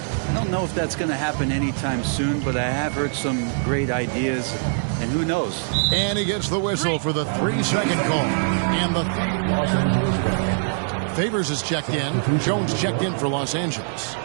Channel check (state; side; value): silent; left; digital silence